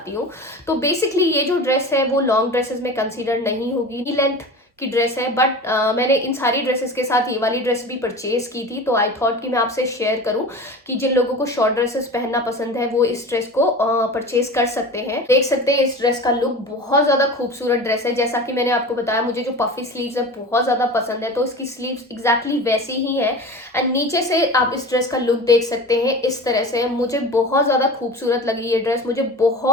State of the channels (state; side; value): normal; both; correlation 0.34